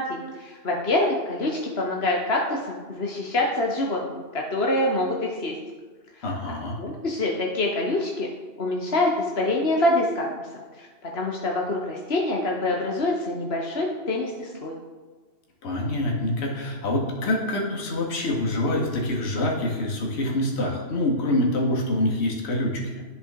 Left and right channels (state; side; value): late; right; 3.1 ms